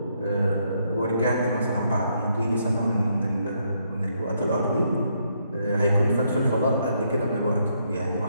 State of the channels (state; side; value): inverted; both; correlation -0.74